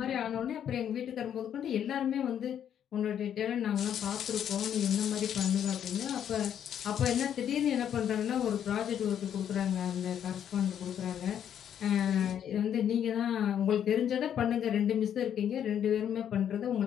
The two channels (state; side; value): quieter; right; 9.4 dB